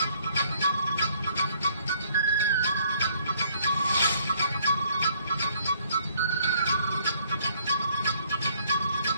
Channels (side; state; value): both; inverted; correlation -0.64